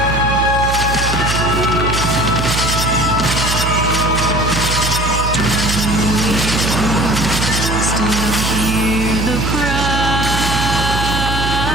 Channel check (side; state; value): right; noise; hum, 3 dB below the sound